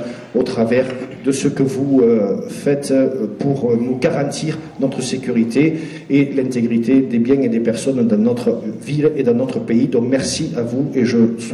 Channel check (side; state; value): both; identical; correlation 1.00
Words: au travers de ce que vous faites pour nous garantir notre sécurité et l'intégrité des biens et des personnes dans notre ville et dans notre pays. Donc merci à vous et je